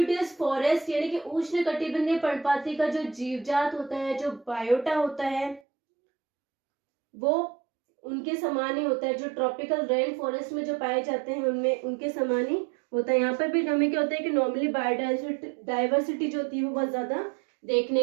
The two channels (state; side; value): drops out; left; at 5.6 s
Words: फॉरेस्ट यानी कि उष्ण कटिबंधीय पर्णपाती का जो जीवजात होता है, जो बायोटा होता है, वो उनके समान ही होता है। जो ट्रॉपिकल रेन फॉरेस्ट में जो पाए जाते हैं उनमें उनके समान ही होता है। यहाँ पर भी हमें क्या होता है कि नॉर्मली बायोडाइवर्सिटी जो होती है वो बहुत ज्यादा